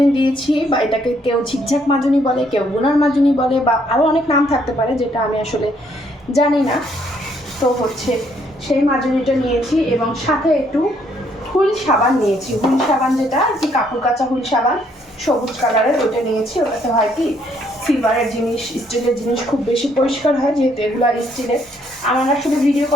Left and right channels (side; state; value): both; normal; correlation 0.68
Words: দিয়েছি, বা এটাকে কেউ ঝিকঝাক মাজুনি বলে, কেউ গুনার মাজুনি বলে, বা আরও অনেক নাম থাকতে পারে যেটা আমি আসলে জানি না। তো সেই মাজুনিটা নিয়েছি এবং সাথে একটু হুইল সাবান নিয়েছি। হুইল সাবান যেটা আর কি, কাপড় কাচা হুইল সাবান, সবুজ কালারের, ওইটা নিয়েছি। ওটাতে হয় কি, সিলভারের জিনিস, স্টিলের জিনিস খুব বেশি পরিষ্কার হয়, যেহেতু এগুলো আর স্টিলের। আমার আসলে ভিডিও